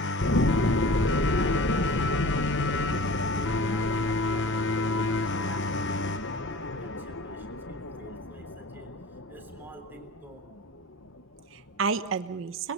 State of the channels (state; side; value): normal; both; correlation 0.39